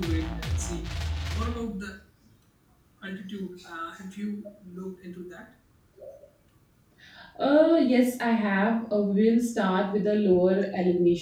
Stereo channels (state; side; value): identical; both; correlation 1.00